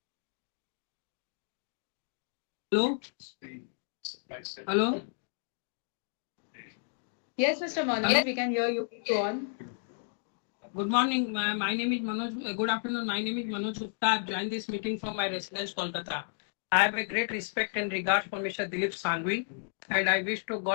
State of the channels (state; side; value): silent; right; digital silence